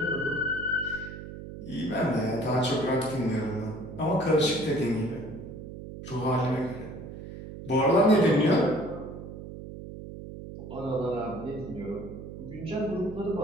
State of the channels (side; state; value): right; noise; hum, 11 dB below the sound